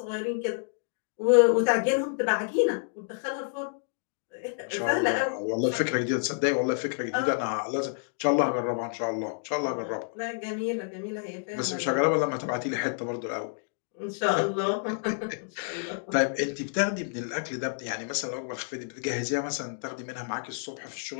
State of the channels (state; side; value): silent; right; digital silence